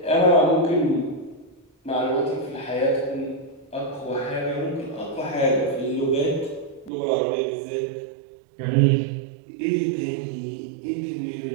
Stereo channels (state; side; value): drops out; left; at 6.9 s